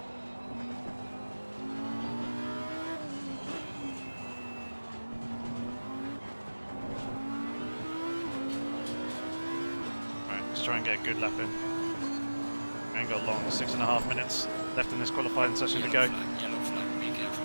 Let's try and get a good lap in. We ain't got long, 6.5 minutes left in this qualifying session to go. Yellow flag, be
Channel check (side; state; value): both; inverted; correlation -1.00